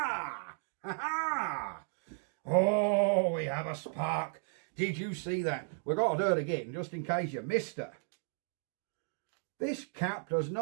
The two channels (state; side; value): silent; left; 55 dB below the other